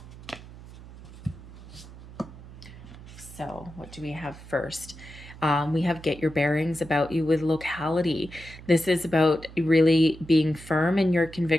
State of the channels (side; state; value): right; noise; hum, 17 dB below the sound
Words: So what do we have first? We have get your bearings about you with locality. This is about really being firm in your